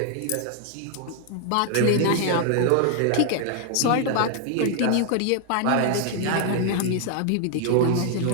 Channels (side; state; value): both; different; correlation 0.00